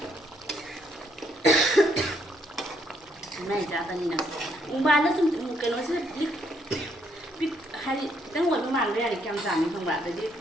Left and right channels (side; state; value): both; normal; correlation 0.72